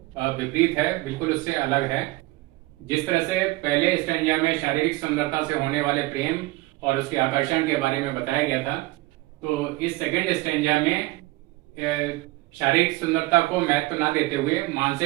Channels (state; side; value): quieter; left; 20.7 dB